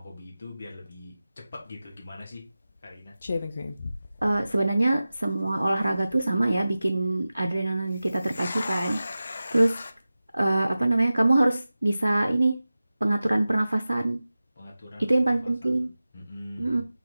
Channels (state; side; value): inverted; both; correlation -0.95